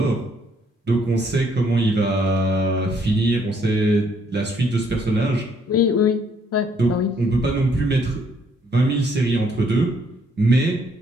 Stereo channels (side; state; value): both; normal; correlation 0.67